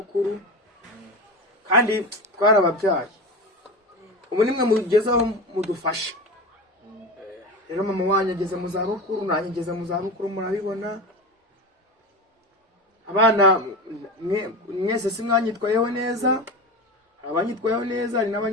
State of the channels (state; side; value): normal; both; correlation 0.25